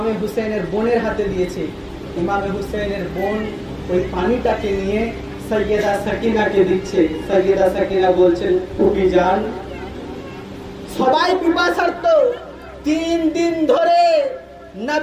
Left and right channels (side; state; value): both; identical; correlation 1.00